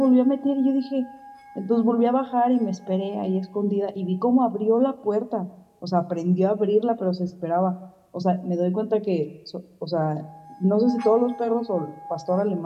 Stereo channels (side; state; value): both; identical; correlation 1.00